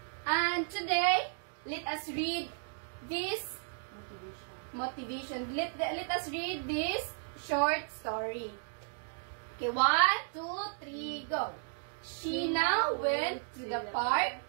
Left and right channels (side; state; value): left; silent; digital silence